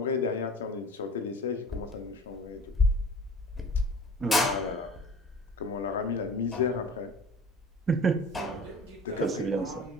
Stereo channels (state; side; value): normal; both; correlation 0.42